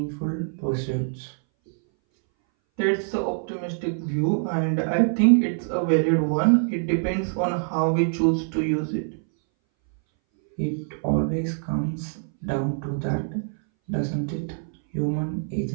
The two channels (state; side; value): silent; left; 60 dB below the other